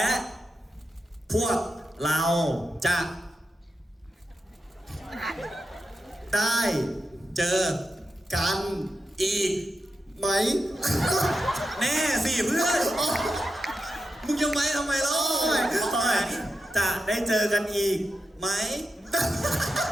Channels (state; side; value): normal; both; correlation 0.89